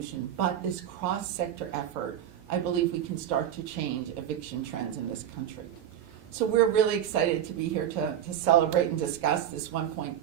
but this cross-sector effort, I believe we can start to change eviction trends in this country. So we're really excited to be here to celebrate and discuss this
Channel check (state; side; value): quieter; left; 10.3 dB